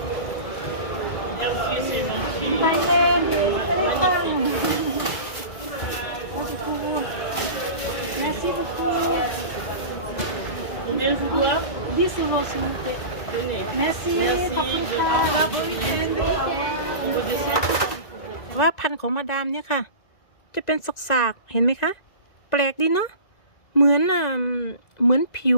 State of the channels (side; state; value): right; late; 2.0 ms